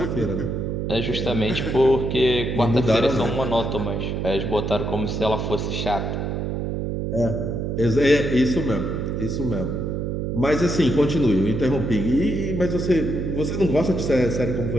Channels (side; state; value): right; noise; hum, 2 dB below the sound